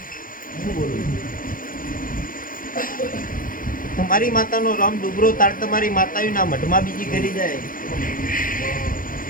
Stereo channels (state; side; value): late; right; 0.40 ms